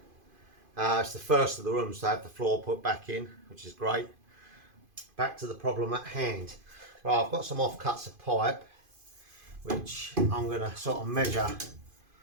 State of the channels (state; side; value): late; left; 2.5 ms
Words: It's the first of the rooms to have the floor put back in, which is great. Back to the problem at hand. Right, I've got some offcuts of pipe, which I'm going to sort of measure